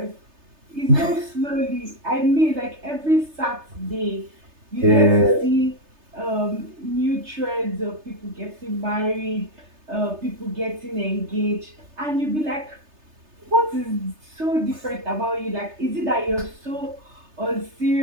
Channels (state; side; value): late; left; 3.3 ms